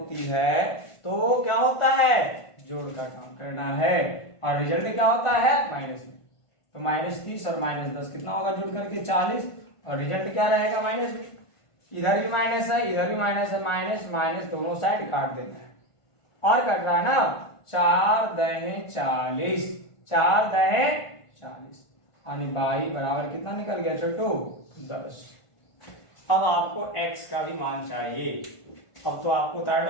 है तो क्या होता है, जोड़ का काम करना है, और रिजल्ट क्या होता है, माइनस में। तो माइनस 30 और माइनस 10 कितना होगा जोड़ करके 40, और रिजल्ट क्या रहेगा, माइनस में। इधर भी माइनस है, इधर भी माइनस है, माइनस माइनस दोनों साइड काट देना है, और कट रहा है ना, 4 दहे 40, 4 दहे 40, यानी y बराबर कितना निकल गया छोटू, 10। अब आपको x का भी मान चाहिए, अब तो आपको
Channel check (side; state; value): right; late; 1.5 ms